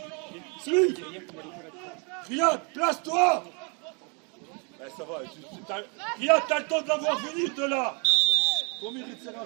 Suis. Riyad, place-toi. Eh, ça va. Riyad, t'as le temps de l'avoir venir de là. Ton mur, il ne sert à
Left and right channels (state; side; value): quieter; left; 34.9 dB